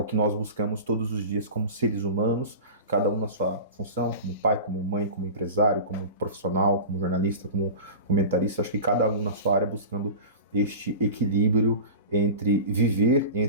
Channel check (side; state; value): both; inverted; correlation -0.32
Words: que nós buscamos todos os dias como seres humanos, cada um na sua função, como pai, como mãe, como empresário, como profissional, como jornalista, como comentarista. Acho que cada um na sua área buscando este equilíbrio entre viver,